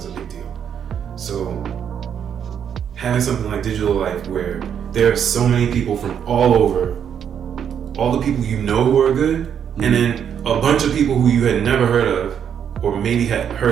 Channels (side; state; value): left; quieter; 8.4 dB